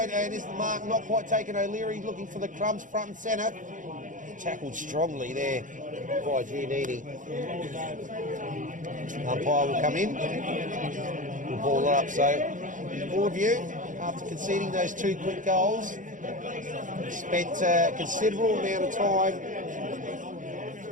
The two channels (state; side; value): late; left; 0.37 ms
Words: and is the mark not quite taken? O'Leary looking for the crumbs front and centre. Tackled strongly there by Giannini. Umpire will come in. We'll ball it up. So Broadview, after conceding those 2 quick goals, spent a considerable amount of time